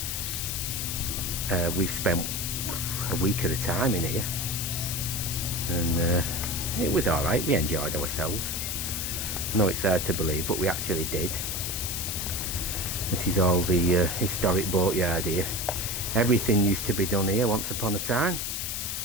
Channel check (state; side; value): noise; left; hiss, 2 dB below the sound